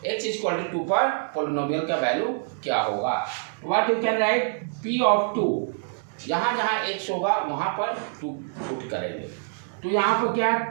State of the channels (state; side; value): silent; left; digital silence